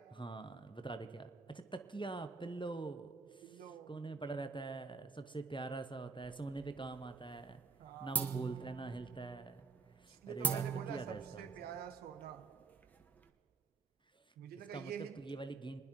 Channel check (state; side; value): quieter; left; 4.3 dB